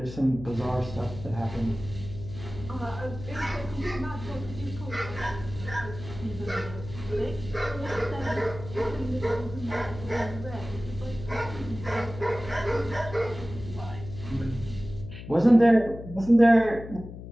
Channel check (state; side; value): noise; left; hum, 12 dB below the sound